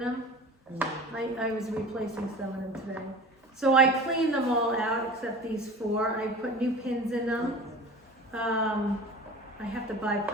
I was replacing some of them today. So I cleaned them all out except these 4. I put new pins in them. I have to buy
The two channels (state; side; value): normal; both; correlation 0.38